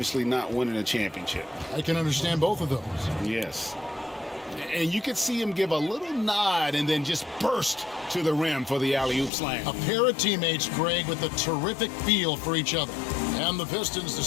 not winning a championship. I can understand both of those. Yes. And you could see him give a little nod and then just burst to the rim for the alley-oop slam. A pair of teammates, Greg, with a terrific feel for each other. And the Pistons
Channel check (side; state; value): right; drops out; at 9.3 s